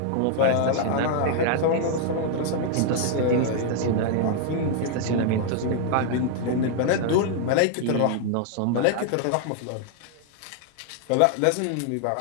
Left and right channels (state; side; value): different; both; correlation 0.00